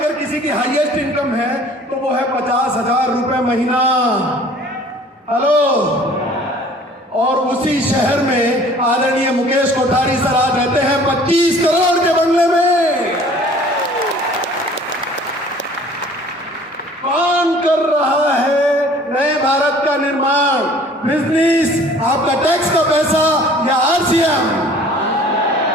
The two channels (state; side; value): normal; both; correlation 0.51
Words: किसी की हाईएस्ट इनकम है तो वो है 50,000 रुपए महीना। हेलो। और उसी शहर में आदरणीय मुकेश कोठारी सर आज रहते हैं 25 करोड़ के बंगले में। कौन कर रहा है नए भारत का निर्माण? बिजनेस, आपका टैक्स का पैसा या आरसीएम?